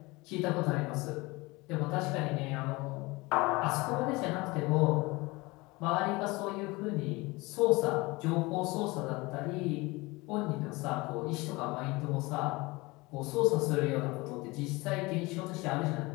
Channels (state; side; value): quieter; right; 23.3 dB